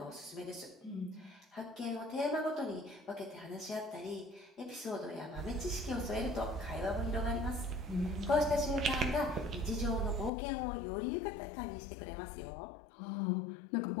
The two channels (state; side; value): drops out; right; at 10.3 s